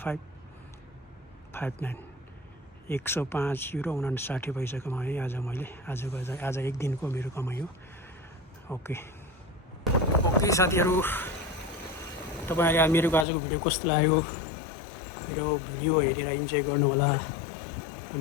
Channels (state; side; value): drops out; right; at 13.2 s